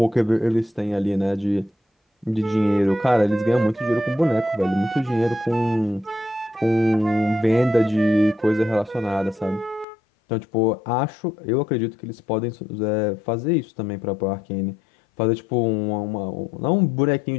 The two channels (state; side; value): drops out; right; at 9.9 s